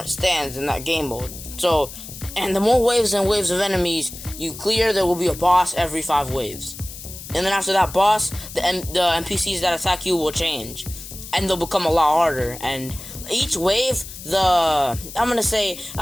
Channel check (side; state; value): left; noise; hiss, 13 dB below the sound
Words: stands in that game mode. So, and the more waves and waves of enemies you clear, there will be a boss every 5 waves. And then after that boss, the NPCs that attack you will change, and they'll become a lot harder. And each wave, I